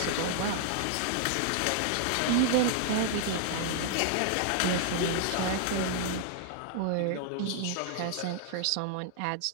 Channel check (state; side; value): different; both; correlation 0.00